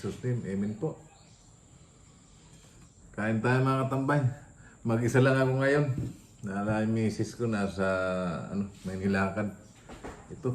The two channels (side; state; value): both; identical; correlation 1.00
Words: name, Amen po. Kain tayo mga katambay. Mag-isa lang ako ngayon. Nala yung misis ko nasa may nilakad.